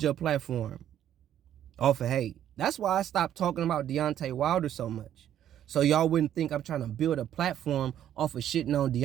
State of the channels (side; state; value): left; quieter; 10.9 dB